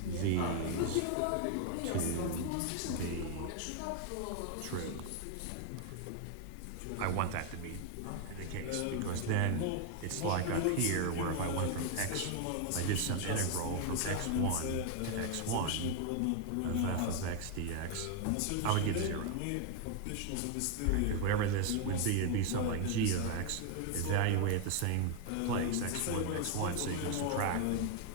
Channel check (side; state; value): both; different; correlation 0.01